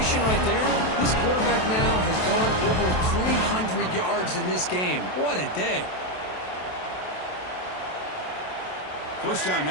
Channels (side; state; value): right; late; 27 ms